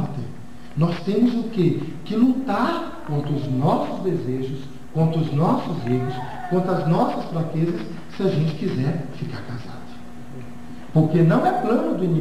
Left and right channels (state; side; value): identical; both; correlation 1.00